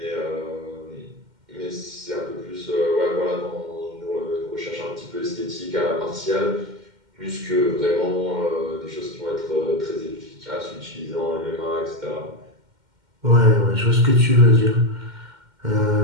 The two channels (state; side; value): late; left; 2.1 ms